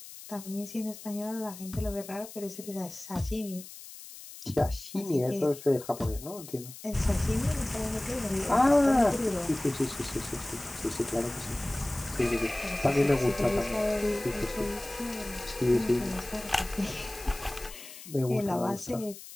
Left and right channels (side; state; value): left; noise; hiss, 15 dB below the sound